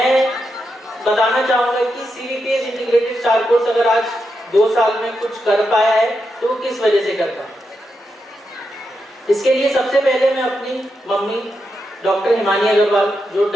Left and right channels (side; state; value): both; normal; correlation 0.85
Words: बताना चाहूँगा कि CVPS इंटीग्रेटेड स्टार कोर्स अगर आज 2 साल में कुछ कर पाया है तो किस वजह से कर पाया। इसके लिए सबसे पहले मैं अपनी मम्मी डॉक्टर हिमानी अग्रवाल, जो